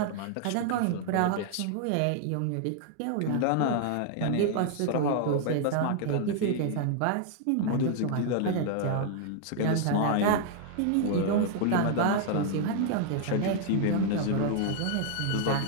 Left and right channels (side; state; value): both; different; correlation 0.00